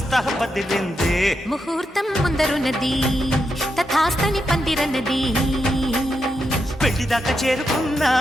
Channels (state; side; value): normal; both; correlation 0.84